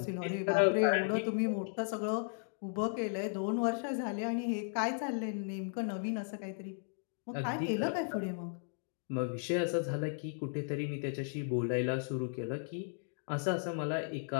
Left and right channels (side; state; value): right; silent; digital silence